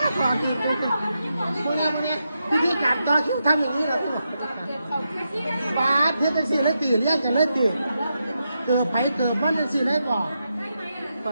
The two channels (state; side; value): inverted; both; correlation -0.85